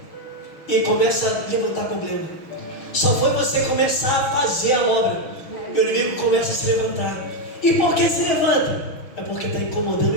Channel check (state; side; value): late; right; 6.4 ms